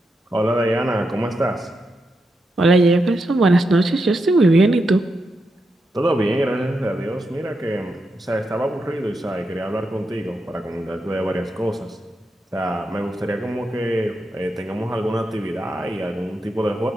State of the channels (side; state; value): both; normal; correlation 0.85